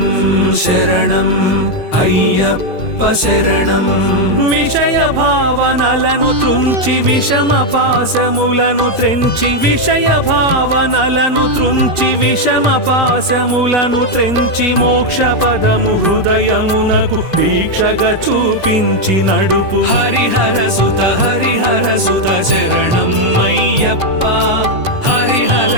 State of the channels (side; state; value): right; late; 2.5 ms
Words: శరణం అయ్యప్ప శరణం విషయ భావనలను తుంచి విషమ పాశములను త్రెంచి విషయ భావనలను తుంచి విషమ పాశములను త్రెంచి మోక్ష పదము హృదయమునకు దీక్షగా చూపించి నడుపు హరిహర సుత శరణం అయ్యప్ప హరిహర